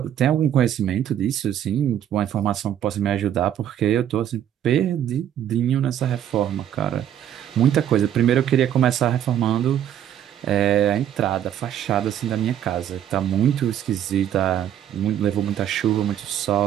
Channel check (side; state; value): left; quieter; 10.4 dB